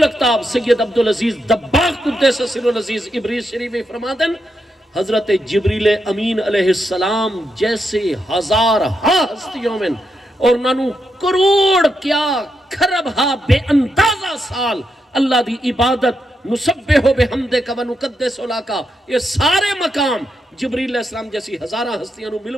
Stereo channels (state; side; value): normal; both; correlation 0.83